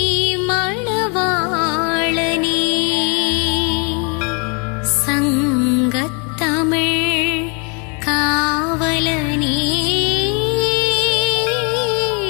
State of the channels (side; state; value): right; quieter; 35.4 dB